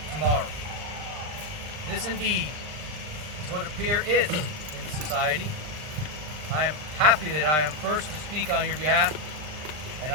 tomorrow. This indeed is what a peer is in the society. I am happy that I am first to speak on your behalf, and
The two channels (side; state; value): left; late; 39 ms